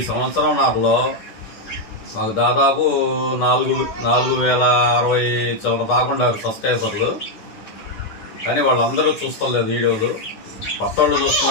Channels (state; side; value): late; right; 9.9 ms